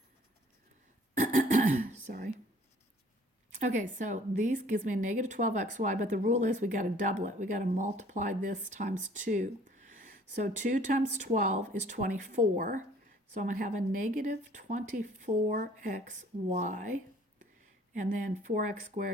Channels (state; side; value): normal; both; correlation 0.55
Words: Sorry. Okay, so these gives me a negative 12xy, but the rule is we got to double it. We got to multiply this times 2. So 2 times 12 is 24. So I'm going to have a negative 24xy. And then 4x